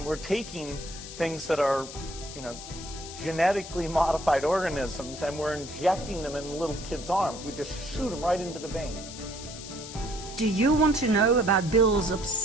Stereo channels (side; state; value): left; noise; hiss, 12 dB below the sound